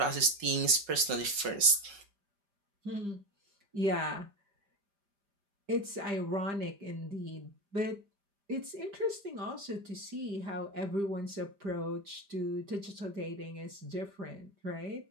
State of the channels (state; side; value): late; left; 5.4 ms